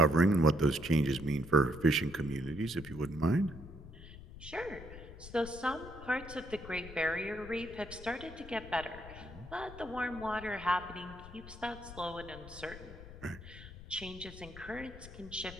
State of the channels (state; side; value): noise; left; rumble, 14 dB below the sound